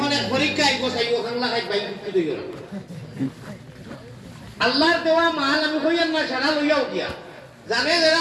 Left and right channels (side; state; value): both; identical; correlation 1.00